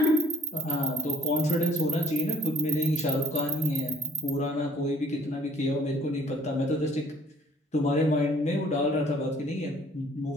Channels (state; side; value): normal; both; correlation 0.58